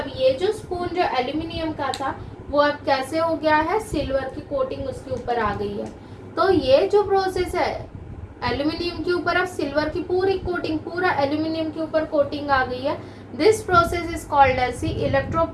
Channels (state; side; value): identical; both; correlation 1.00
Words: ये जो स्पून जो एल्यूमिनियम का था वो अब कैसे हो गया है, सिल्वर की कोटिंग उसके ऊपर आ गई है। तो ये जो प्रोसेस है, एल्यूमिनियम के ऊपर अब सिल्वर की पूरी कोटिंग, पूरा एल्यूमिनियम के ऊपर कोटिंग आ गई है। This process is called as the